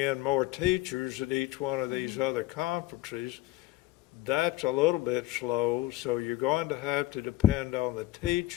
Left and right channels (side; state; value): right; quieter; 16.9 dB